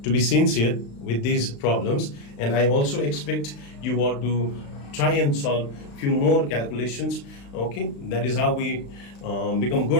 sincere with these problems, and I also expect you all to try and solve few more calculations. Okay, that is how we become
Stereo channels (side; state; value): right; late; 35 ms